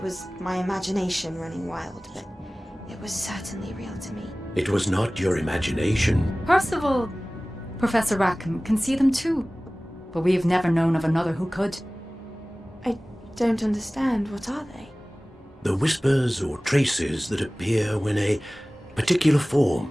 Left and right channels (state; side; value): normal; both; correlation 0.98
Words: was my imagination running wild, but it was certainly real to me. It was not your imagination. Percival, Professor Rackham can see them too. But we've never known of another who could. I don't understand. What are they? The whispers or traces that appear when a particular